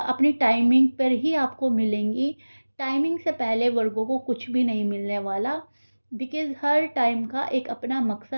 टाइमिंग पर ही आपको मिलेंगी। टाइमिंग से पहले वर्गों को कुछ भी नहीं मिलने वाला, बिकॉज़ हर टाइम का एक अपना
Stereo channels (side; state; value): both; inverted; correlation -1.00